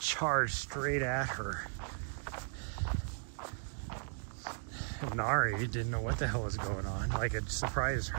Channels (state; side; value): silent; left; digital silence